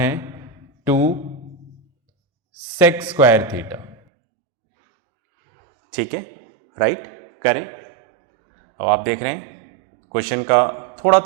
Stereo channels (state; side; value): drops out; left; at 4.0 s